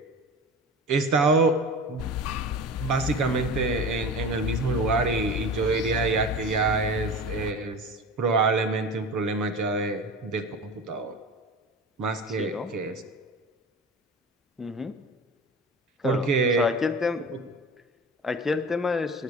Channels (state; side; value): normal; both; correlation 0.33